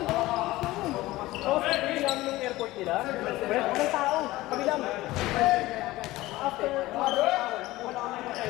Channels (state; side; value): quieter; right; 18.0 dB